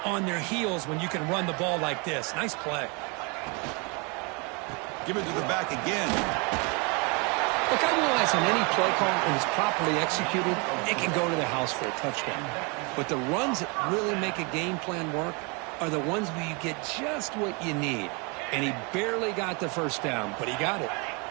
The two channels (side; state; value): left; quieter; 31.4 dB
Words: on their heels when you can run the ball like this. Nice play. Give it to the back again. Look, I realize on any play call, when it's properly executed, it can go to the house for a touchdown. But the runs that really make a game plan work are the ones where you get just what you need. And he barely got the first down, but he got it.